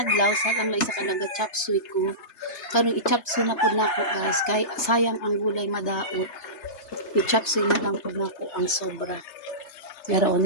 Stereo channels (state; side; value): late; right; 3.3 ms